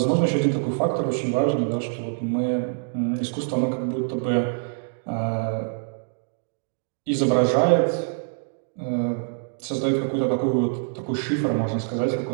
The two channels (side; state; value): left; silent; digital silence